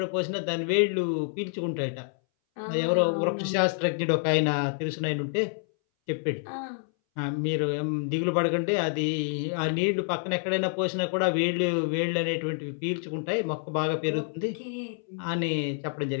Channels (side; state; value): right; silent; 59 dB below the other